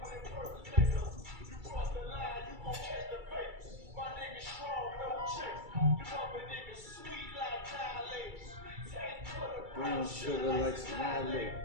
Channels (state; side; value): late; left; 2.3 ms